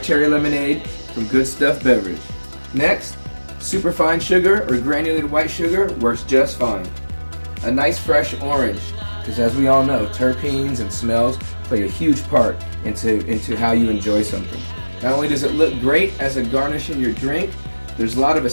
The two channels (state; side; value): inverted; both; correlation -1.00